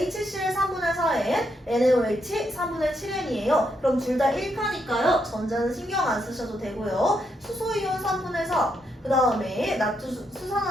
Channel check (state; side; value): normal; both; correlation 0.79